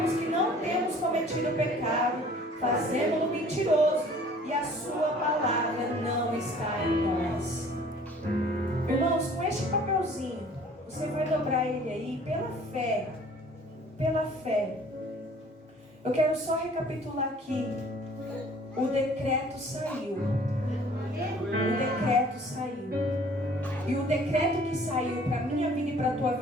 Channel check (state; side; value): normal; both; correlation 0.52